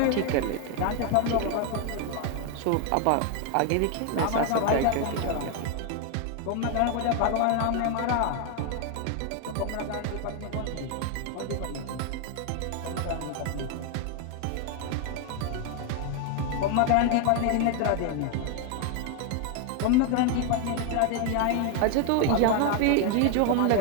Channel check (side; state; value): both; different; correlation 0.01